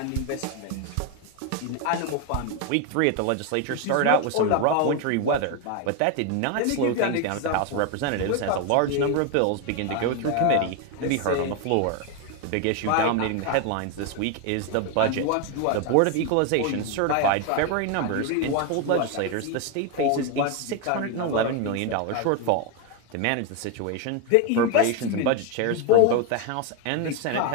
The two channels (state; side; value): different; both; correlation 0.01